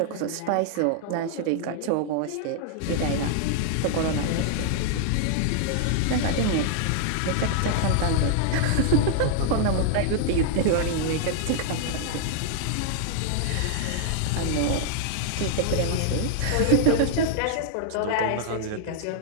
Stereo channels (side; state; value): both; different; correlation -0.01